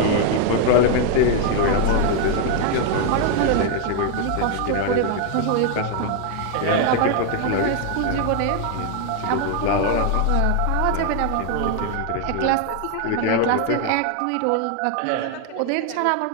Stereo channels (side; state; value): both; different; correlation 0.01